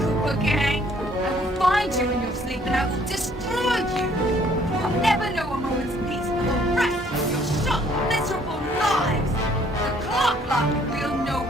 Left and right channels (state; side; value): normal; both; correlation 0.62